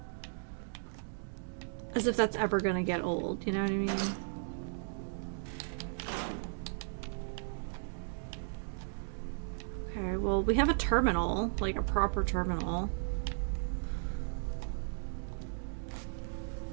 As if that's ever gonna get old, you know what I mean? Okay, well, we have a terminal, like a proper terminal.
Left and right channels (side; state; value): left; silent; digital silence